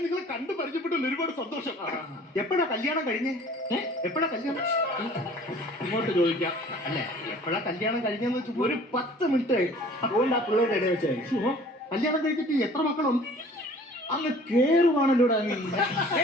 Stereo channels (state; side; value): normal; both; correlation 0.49